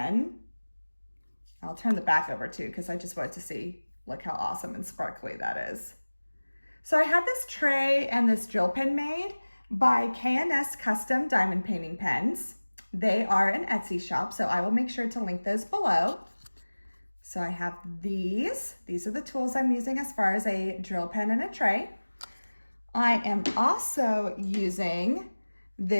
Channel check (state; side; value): inverted; both; correlation -1.00